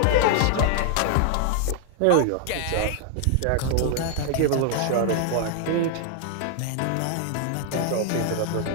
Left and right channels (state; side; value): different; both; correlation 0.00